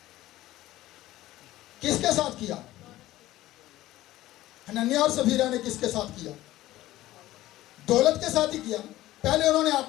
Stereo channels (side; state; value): right; quieter; 15.8 dB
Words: किसके साथ किया? हनन्याह और सफीरा ने किसके साथ किया? दौलत के साथ ही किया। पहले उन्होंने